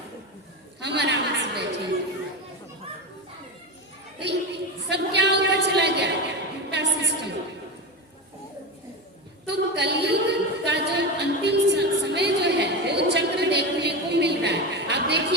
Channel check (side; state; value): both; normal; correlation 0.19